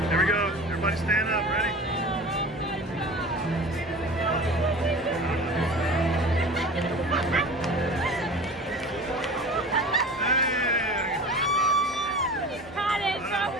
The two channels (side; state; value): both; normal; correlation 0.37